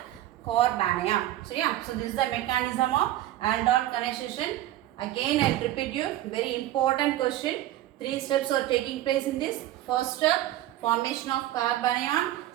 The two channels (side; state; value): left; quieter; 14.4 dB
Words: carbon ion. So yeah, so this is the mechanism of aldol condensation. Again I will repeat you, very important question. 3 steps are taking place in this. First step, formation of carbon ion.